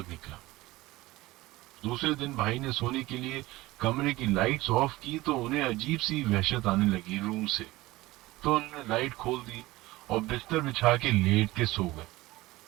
نکلا۔ دوسرے دن بھائی نے سونے کے لیے کمرے کی لائٹس آف کی تو انہیں عجیب سی وحشت آنے لگی روم سے، تو انہوں نے لائٹ کھول دی اور بستر بچھا کے لیٹ کے سو گئے۔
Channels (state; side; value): quieter; left; 19.0 dB